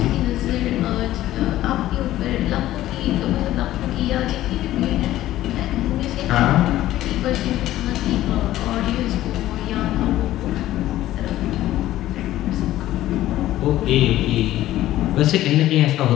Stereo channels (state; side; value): quieter; right; 14.4 dB